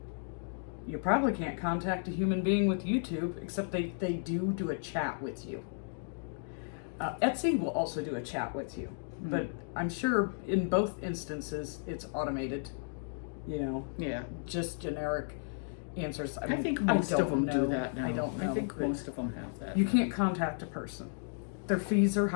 You probably can't contact a human being with YouTube, except they do a chat with you. Etsy will also do a chat with you, but I'm sure in both instances it's automated, you know, Yeah. just generic answers. I think most of them do that now. I don't know. I think but most of them have that. you can't contact a person. Their fees are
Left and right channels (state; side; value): silent; right; digital silence